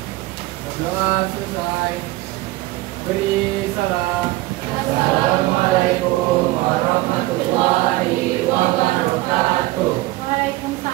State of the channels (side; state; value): left; quieter; 18.9 dB